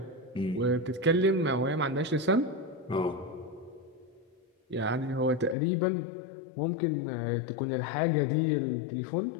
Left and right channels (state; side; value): drops out; right; at 5.6 s